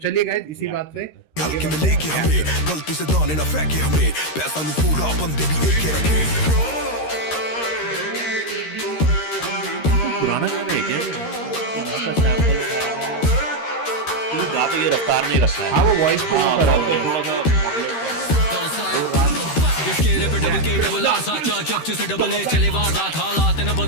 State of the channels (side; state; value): right; late; 13 ms